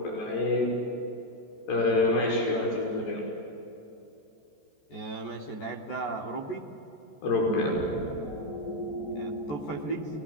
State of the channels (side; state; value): right; late; 14 ms